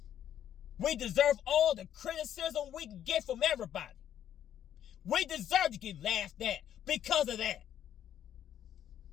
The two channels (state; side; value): quieter; right; 10.4 dB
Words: We deserve all the criticism we can get from everybody. We deserve to get laughed at because of that.